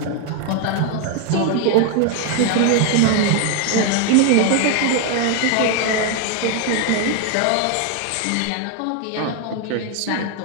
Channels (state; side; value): different; both; correlation 0.01